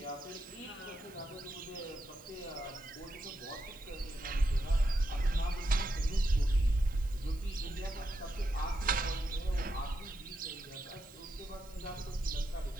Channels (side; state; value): right; noise; hiss, 24 dB below the sound